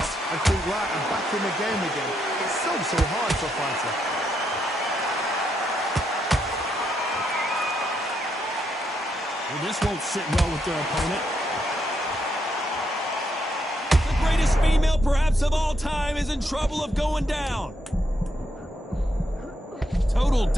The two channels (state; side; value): normal; both; correlation 0.79